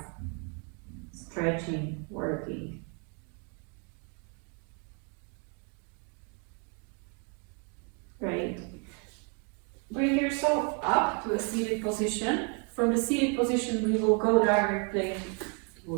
stretching, working. Great. Bring yourself up to a seated position. From the seated position, we will go directly,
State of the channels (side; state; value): left; quieter; 37.0 dB